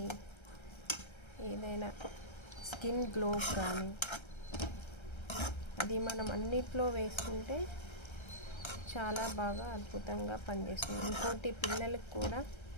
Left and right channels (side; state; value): right; late; 1.3 ms